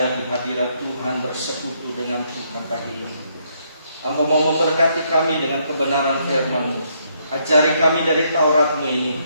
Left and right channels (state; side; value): inverted; both; correlation -0.73